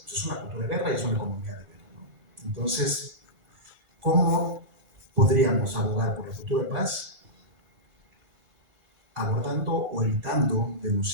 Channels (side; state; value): left; late; 1.5 ms